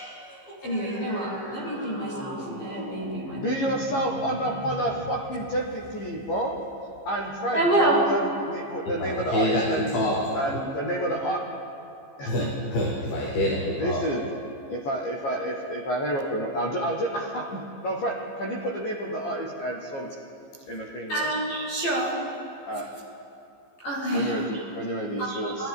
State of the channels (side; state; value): right; late; 15 ms